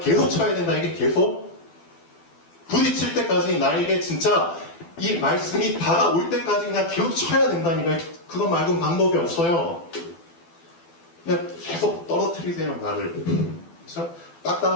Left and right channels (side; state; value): right; late; 12 ms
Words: 쳐야 된다. 이게 계속 부딪힐 때까지 나에게 진짜 이 말씀이 다가올 때까지 그냥 계속 쳐야 된다니까. 그것 말고는 방법이 없어요. 그냥 계속 떨어뜨리세요, 나를. 그렇죠?